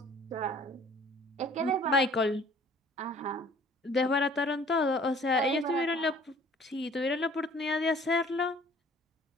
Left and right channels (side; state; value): both; normal; correlation 0.53